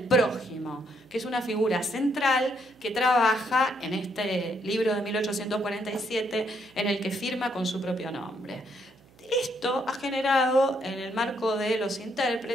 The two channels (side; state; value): right; noise; hum, 29 dB below the sound